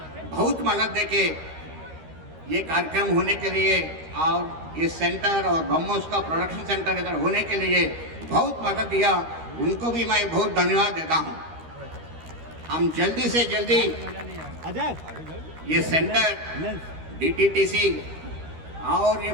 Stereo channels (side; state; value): left; late; 13 ms